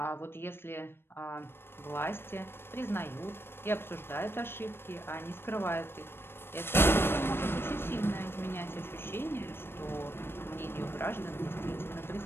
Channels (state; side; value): late; right; 0.11 ms